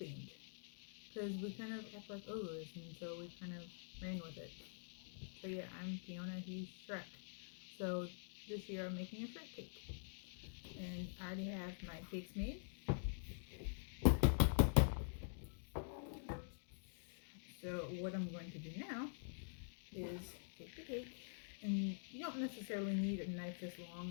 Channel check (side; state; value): right; silent; digital silence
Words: because we kind of act like ogres, and so we kind of ran with it. So yeah, I'm Fiona, he's Shrek. So this year I'm making a Shrek cake. And I already have my cakes made. So what I'm going to do now is take the cake, and you don't necessarily need a knife this